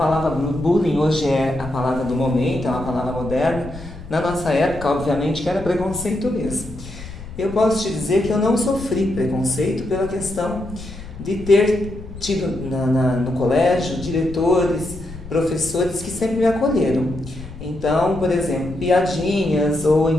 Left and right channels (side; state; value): left; noise; rumble, 14 dB below the sound